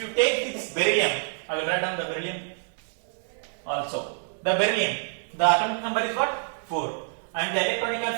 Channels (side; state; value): left; silent; digital silence